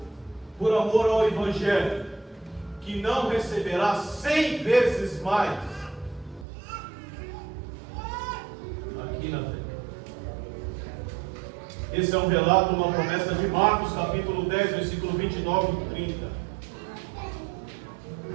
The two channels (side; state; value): left; drops out; at 6.5 s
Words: por amor ao Evangelho, que não receberá 100 vezes mais aqui na terra. Esse é um relato, uma promessa de Marcos, capítulo 10, versículo 29 e 30.